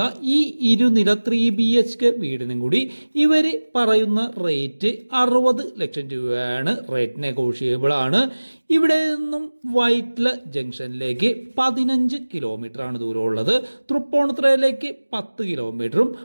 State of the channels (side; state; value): both; inverted; correlation -1.00